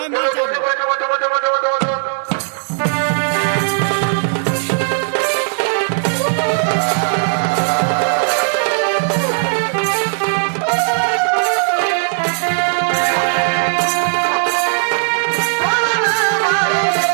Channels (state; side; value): silent; left; digital silence